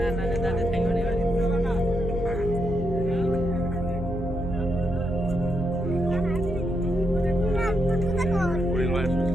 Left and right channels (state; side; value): normal; both; correlation 0.82